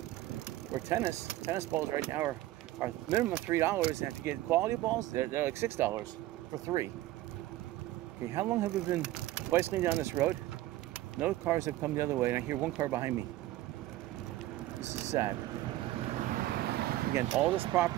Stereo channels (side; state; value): left; quieter; 15.8 dB